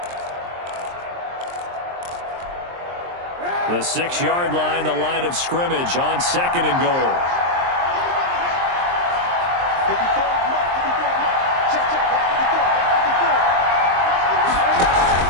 The 6-yard line, the line of scrimmage on 2nd and goal.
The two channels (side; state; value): left; late; 23 ms